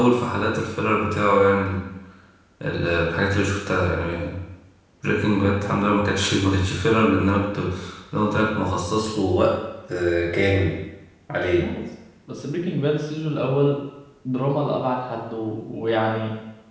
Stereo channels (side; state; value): both; identical; correlation 1.00